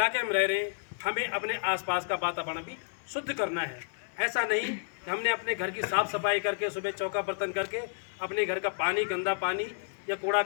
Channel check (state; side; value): silent; right; digital silence